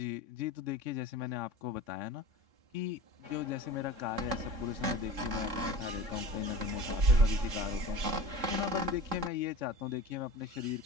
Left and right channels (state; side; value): late; left; 3.7 ms